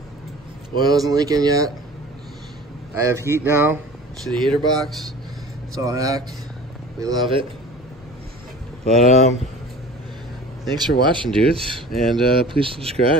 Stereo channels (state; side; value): normal; both; correlation 0.41